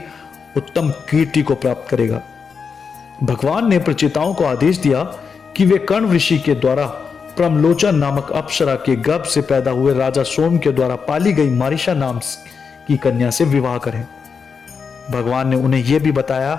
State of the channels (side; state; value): right; quieter; 5.7 dB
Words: उत्तम कीर्ति को प्राप्त करेगा। भगवान ने प्रचेताओं को आदेश दिया कि वे कर्ण ऋषि के द्वारा प्रमलोचन नामक अप्सरा के गर्भ से पैदा हुए राजा सोम के द्वारा पाली गई मारिशा नाम की कन्या से विवाह करें। भगवान ने उन्हें यह भी बताया